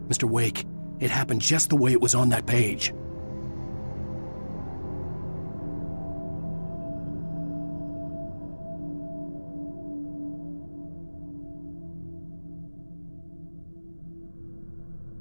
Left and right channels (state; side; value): inverted; both; correlation -1.00